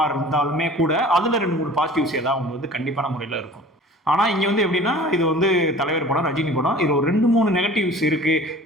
இருந்தாலுமே கூட அதில் 2-3 பாசிட்டிவ்ஸ் ஏதாவது ஒன்று வந்து கண்டிப்பான முறையில் இருக்கும். ஆனால் இங்கே வந்து எப்படின்னா, இது வந்து தலைவர் படம், ரஜினி படம், இது ஒரு 2-3 நெகட்டிவ்ஸ் இருக்குது,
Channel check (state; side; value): normal; both; correlation 0.44